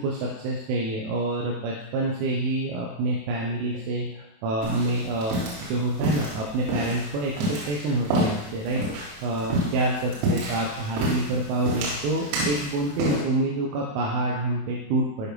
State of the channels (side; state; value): left; late; 27 ms